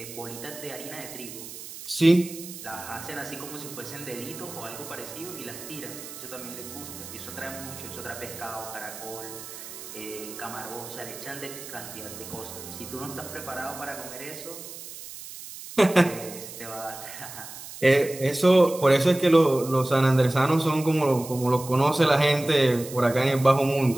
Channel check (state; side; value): noise; right; hiss, 13 dB below the sound